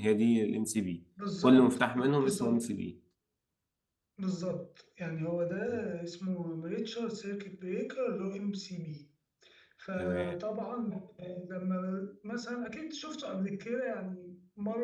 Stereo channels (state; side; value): identical; both; correlation 1.00